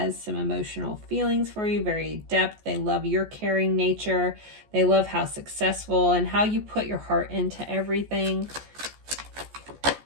some emotional feelings for you, very depth. They love your caring nature. They love how successful and how you put your heart into everything.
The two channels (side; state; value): left; late; 14 ms